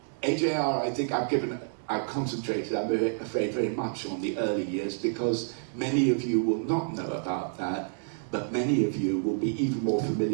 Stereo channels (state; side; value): silent; left; digital silence